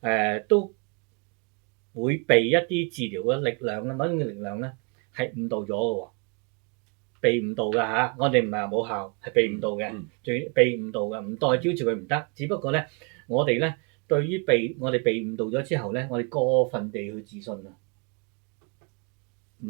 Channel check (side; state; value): left; quieter; 34.4 dB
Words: 都會被一啲治療嘅力量咧，某種嘅力量咧係誤導咗嘅喎，被誤導㗎嚇。我哋唔係話冇效，係被誤導嘅，仲要被誤導嘅，唔代表住佢唔得。只不過咧，我哋咧對於我哋被誤導咗之後咧，我哋過分地去自信啊，